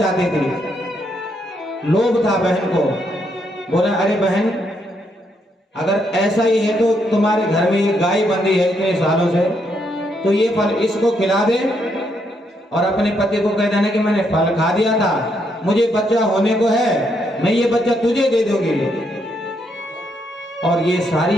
थी, लोभ था बहन को। बोला अरे बहन, अगर ऐसा ही है तो तुम्हारे घर में ये गाय बंधी है इतने सालों से, तो ये फल इसको खिला दे और अपने पति को कह देना कि मैंने फल खा दिया था, मुझे बच्चा होने को है, मैं ये बच्चा तुझे दे दूंगी। और ये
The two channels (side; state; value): both; normal; correlation 0.76